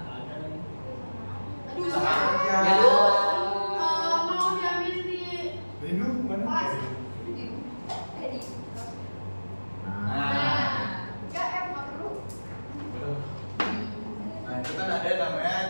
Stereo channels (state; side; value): inverted; both; correlation -1.00